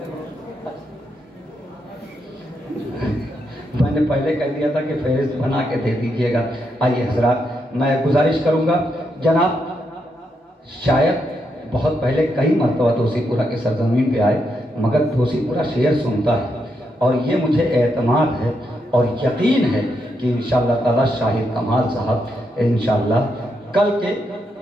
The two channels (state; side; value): normal; both; correlation 0.81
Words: मैंने पहले कह दिया था कि फहरिस्त बना के दे दीजिएगा। आइए हजरात, मैं गुजारिश करूँगा जनाब, शायद बहुत पहले कई मरतबा दोसीपुरा की सरजमीन पे आए, मगर दोसीपुरा शेर सुनता है और ये मुझे एतमाद है और यकीन है कि इंशाअल्लाह ताला शाहिद कमाल साहब इंशाअल्लाह कल के